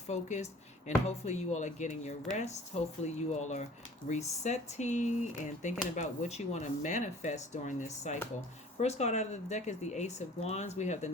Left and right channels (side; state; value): both; normal; correlation 0.48